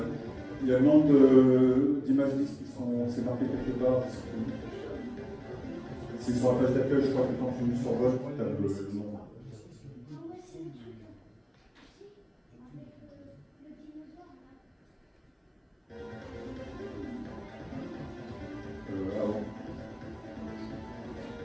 il y a le nombre d'images disques qui sont, c'est marqué quelque part. C'est sur la page d'accueil, je crois que quand tu survoles, tu as le nom. Avant.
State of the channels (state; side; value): identical; both; correlation 1.00